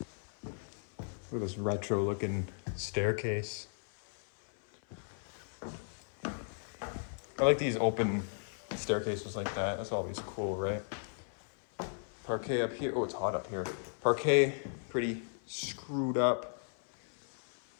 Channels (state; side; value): silent; right; 54 dB below the other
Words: Look at this retro looking staircase. I like these open staircases like that. That's always cool, right? Parquet up here. Oh, it's hot up here. Parquet, pretty screwed up.